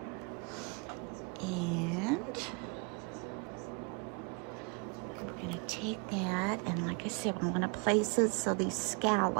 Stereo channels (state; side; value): quieter; left; 33.7 dB